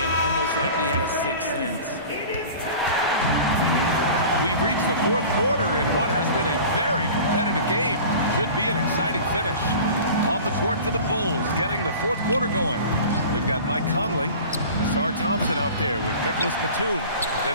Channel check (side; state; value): both; inverted; correlation -0.39